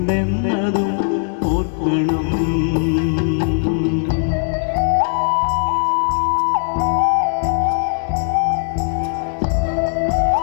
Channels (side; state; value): right; silent; 66 dB below the other